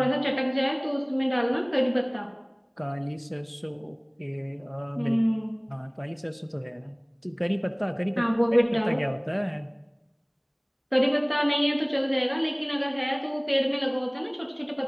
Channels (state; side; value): identical; both; correlation 1.00